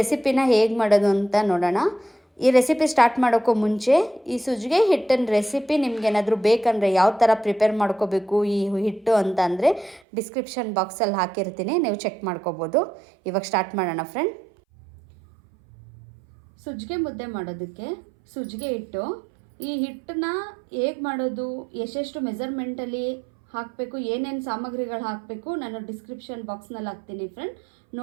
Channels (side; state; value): left; drops out; at 10.0 s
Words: ಹೇಗೆ ಮಾಡೋದು ಅಂತ ನೋಡೋಣ. ಈ ರೆಸಿಪಿ ಸ್ಟಾರ್ಟ್ ಮಾಡೋಕ್ಕೂ ಮುಂಚೆ ಈ ಸಜ್ಜಿಗೆ ಹಿಟ್ಟಿನ ರೆಸಿಪಿ ನಿಮ್ಗೇನಾದರೂ ಬೇಕಂದರೆ ಯಾವ ಥರ ಪ್ರಿಪೇರ್ ಮಾಡ್ಕೋಬೇಕು ಈ ಹಿಟ್ಟು ಅಂತ ಅಂದರೆ ಡಿಸ್ಕ್ರಿಪ್ಷನ್ ಬಾಕ್ಸಲ್ಲಿ ಹಾಕಿರ್ತೀನಿ, ನೀವು ಚೆಕ್ ಮಾಡ್ಕೋಬೋದು. ಇವಾಗ ಸ್ಟಾರ್ಟ್ ಮಾಡೋಣ ಫ್ರೆಂಡ್. ಸಜ್ಜಿಗೆ ಮುದ್ದೆ ಮಾಡೋದಕ್ಕೆ ಸಜ್ಜಿಗೆ ಹಿಟ್ಟು, ಈ ಹಿಟ್ಟನ್ನ ಹೇಗೆ ಮಾಡೋದು, ಎಷ್ಟೆಷ್ಟು ಮೆಜರ್ಮೆಂಟಲ್ಲಿ ಹಾಕಬೇಕು, ಏನೇನು ಸಾಮಗ್ರಿಗಳು ಹಾಕಬೇಕು ನಾನು ಡಿಸ್ಕ್ರಿಪ್ಷನ್ ಬಾಕ್ಸ್ನಲ್ಲಿ ಹಾಕ್ತೀನಿ ಫ್ರೆಂಡ್.